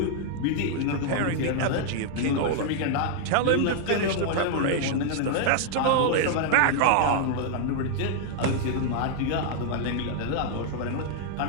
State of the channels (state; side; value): different; both; correlation -0.01